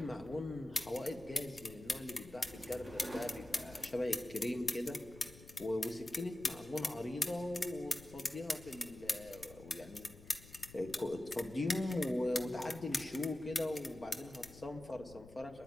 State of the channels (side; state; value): left; noise; rumble, 18 dB below the sound